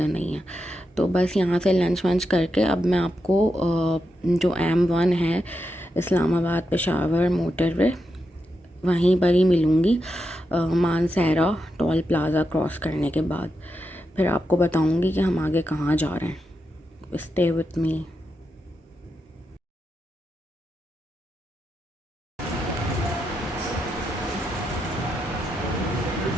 नहीं है। तो बस यहाँ से लंच वंच करके अब मैं आपको जो M1 है इस्लामाबाद पेशावर मोटरवे, वहीं पर ही मिलूँगी मानसहरा टोल प्लाज़ा क्रॉस करने के बाद। फिर आपको बताऊँगी कि हम आगे कहाँ जा रहे हैं। स्टे विथ मी।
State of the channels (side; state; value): both; normal; correlation 0.86